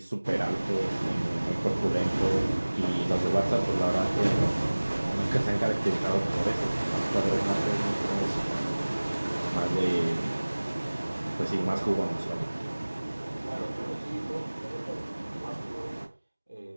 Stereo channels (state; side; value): inverted; both; correlation -1.00